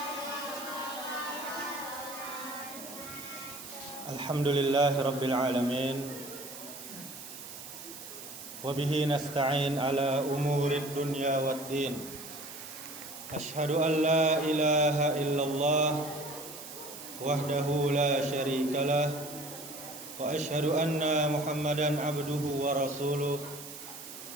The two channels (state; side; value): noise; right; hiss, 12 dB below the sound